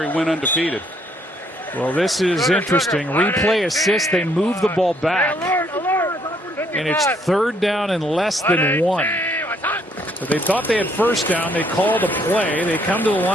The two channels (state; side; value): normal; both; correlation 0.68